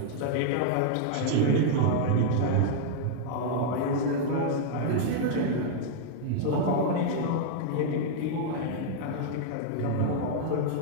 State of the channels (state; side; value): different; both; correlation -0.01